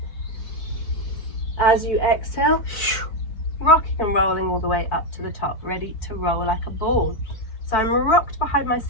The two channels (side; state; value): right; late; 4.5 ms